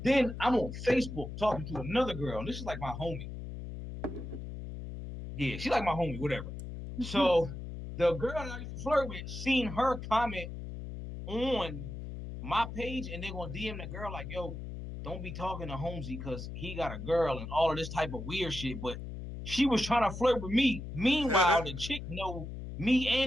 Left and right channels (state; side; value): noise; left; hum, 8 dB below the sound